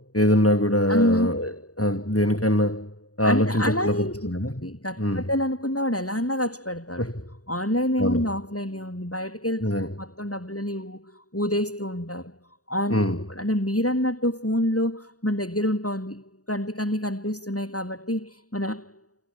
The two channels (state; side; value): late; right; 0.67 ms